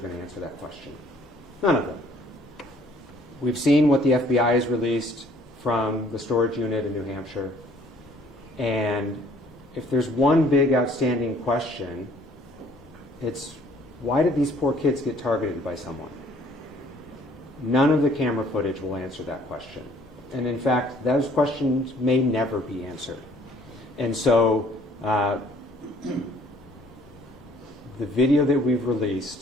to answer that question. None of them. We've seen what the FBI has released from the storage unit in New Hampshire. And if there's one big outstanding question, it's, why did these poor kids get targeted by someone? None of the camera footage will answer that question. And in fact, those questions may never be answered. And so the video that we've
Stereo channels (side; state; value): both; normal; correlation 0.58